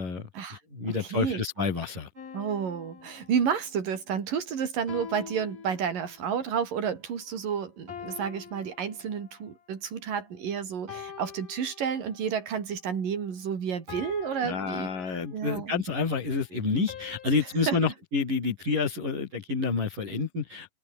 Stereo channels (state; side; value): late; left; 11 ms